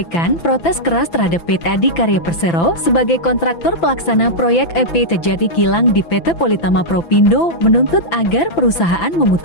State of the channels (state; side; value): late; right; 6.0 ms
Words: protes keras terhadap PT Adikarya Persero sebagai kontraktor pelaksana proyek EP Terjadi Kilang di PT Politama Propindo, menuntut agar perusahaan